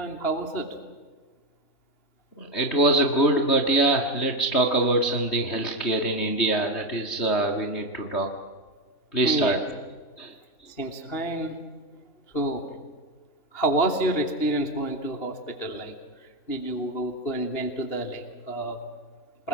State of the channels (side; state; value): right; late; 2.9 ms